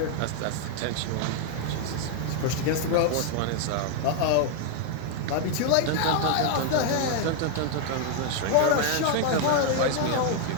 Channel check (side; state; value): both; different; correlation 0.00